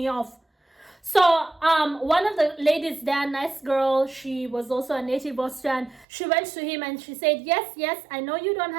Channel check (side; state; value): left; drops out; at 6.1 s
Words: off? So one of the ladies there, nice girl, she was also a native Austrian. She went to him and she said, yes, I know you don't